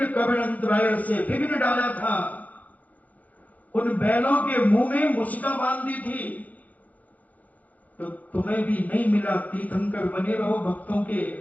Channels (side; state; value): right; late; 0.078 ms